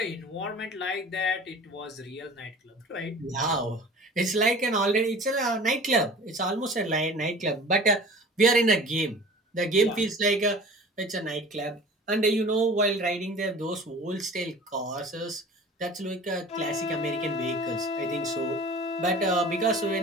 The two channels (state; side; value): normal; both; correlation 0.42